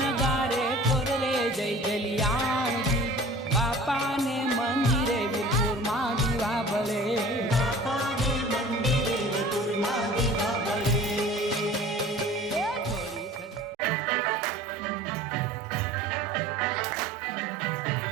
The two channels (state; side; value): normal; both; correlation 0.44